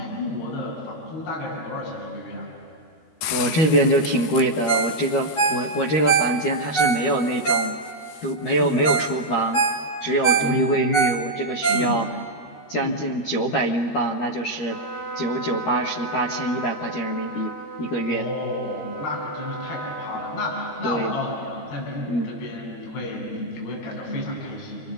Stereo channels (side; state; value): right; late; 13 ms